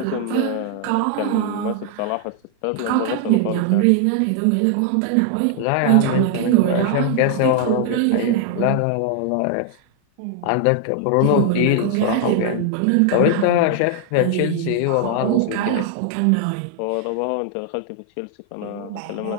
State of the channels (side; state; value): both; different; correlation 0.00